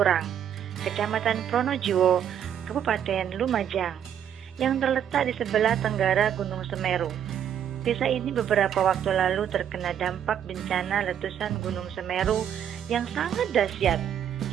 Kecamatan Pronojiwo, Kabupaten Lumajang, yang terletak di sebelah tenggara Gunung Semeru. Desa ini beberapa waktu lalu terkena dampak bencana letusan Gunung Semeru yang sangat dahsyat,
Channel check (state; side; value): quieter; left; 9.3 dB